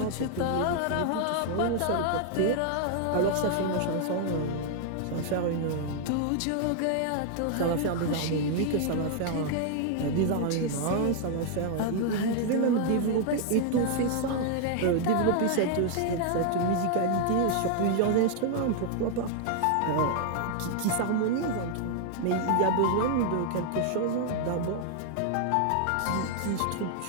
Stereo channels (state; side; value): different; both; correlation 0.00